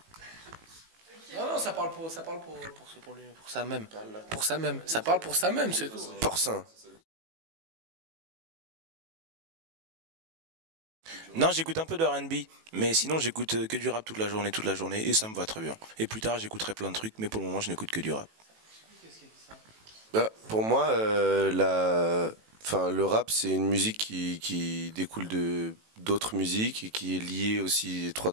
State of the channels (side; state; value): left; late; 18 ms